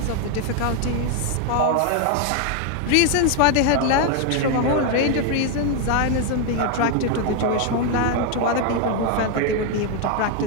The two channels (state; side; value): different; both; correlation 0.01